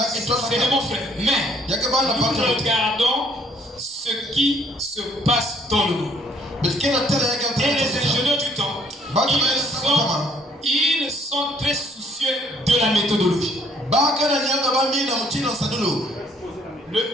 C'est de mon frère. Mais nous regardons ce qui se passe dans le monde. Et les ingénieurs du temps, ils sont très soucieux de la méthodologie.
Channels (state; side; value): normal; both; correlation 0.64